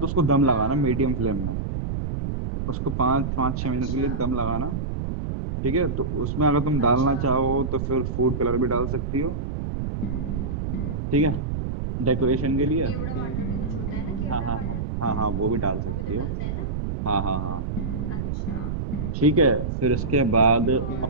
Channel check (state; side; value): noise; right; rumble, 3 dB below the sound